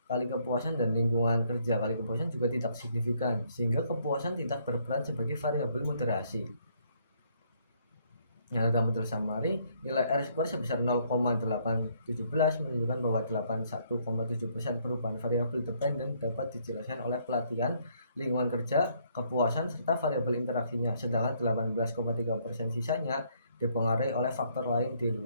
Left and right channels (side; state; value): both; inverted; correlation -0.68